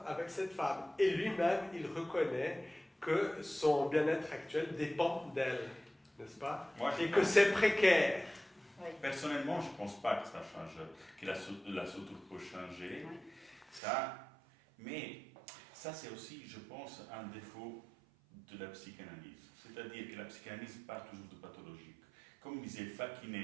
avec cette femme. Et lui-même, il reconnaît que son bien-être actuel dépend d'elle, n'est-ce pas? Et que c'est précaire. Oui. Personnellement, je ne pense pas que ça change, que la structure peut changer. Oui. Ça, mais ça, c'est aussi, je pense, un défaut de la psychanalyse. C'est-à-dire que la psychanalyse part toujours de pathologique. Comme disait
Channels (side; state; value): left; drops out; at 13.8 s